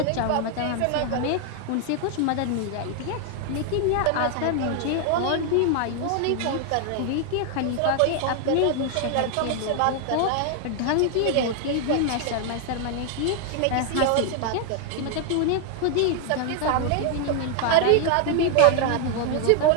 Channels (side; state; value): both; different; correlation 0.00